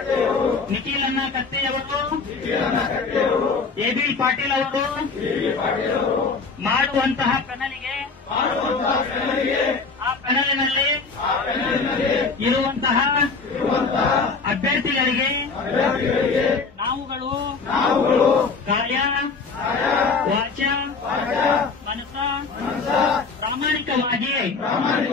ನಿಖಿಲಣ್ಣ ಕತ್ತೆಯವರು, ಎಬಿ ಪಾಟೀಲ್ ಅವರು ಮಾಡುವಂತಹ ಪ್ಯಾನಲ್ಗೆ ಆ ಪ್ಯಾನಲ್ನಲ್ಲಿ ಇರುವಂತಹ ಅಭ್ಯರ್ಥಿಗಳಿಗೆ ನಾವುಗಳು ಕಾಯ ವಾಚ ಮನಸ ಪ್ರಾಮಾಣಿಕವಾಗಿ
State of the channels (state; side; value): quieter; right; 4.6 dB